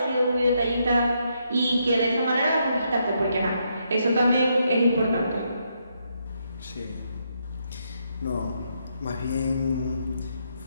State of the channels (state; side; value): inverted; both; correlation -0.77